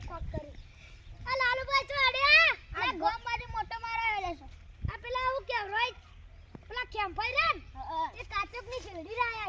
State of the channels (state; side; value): identical; both; correlation 1.00